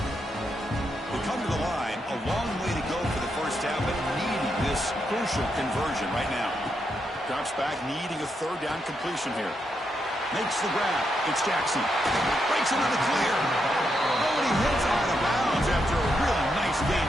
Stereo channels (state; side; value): normal; both; correlation 0.82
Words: this crucial conversion right now. Drops back, needing a third down completion here. Makes the grab. It's Jackson. Breaks into the clear. Oh, and he hits out of bounds after a really nice